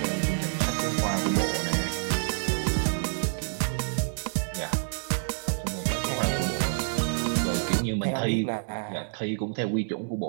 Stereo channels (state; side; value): silent; left; 59 dB below the other